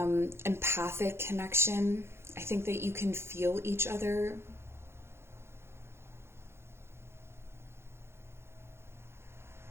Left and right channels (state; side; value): late; left; 0.12 ms